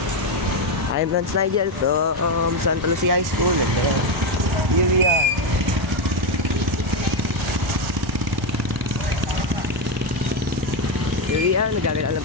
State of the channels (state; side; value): normal; both; correlation 0.08